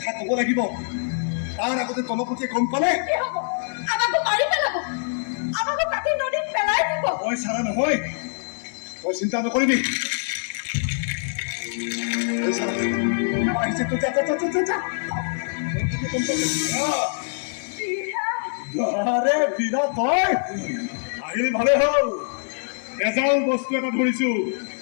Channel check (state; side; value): silent; right; digital silence